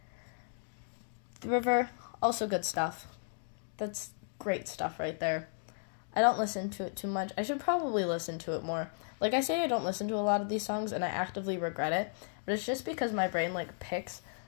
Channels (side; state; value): right; silent; digital silence